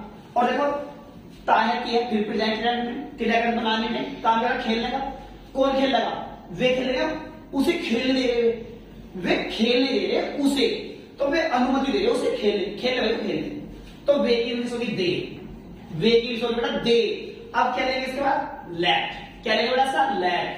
और देखो ताया किया, फिर प्रेजेंट क्रियाकरण बनाने में काम करा, खेलने का। कौन खेल लगा? वे खेल रहे, उसे खेलने दे रहे, वे खेलने दे रहे उसे, तो वे अनुमति दे रहे उसे खेलने, खेलने वाले को खेलने। तो वे की इंग्लिश होगी दे, वे की इंग्लिश होगी बेटा दे। अब क्या लेंगे इसके बाद? लेट। क्या लेंगे बेटा सा?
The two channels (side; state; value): both; identical; correlation 1.00